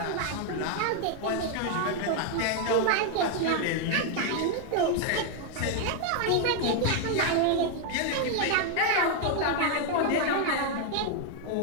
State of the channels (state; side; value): different; both; correlation 0.00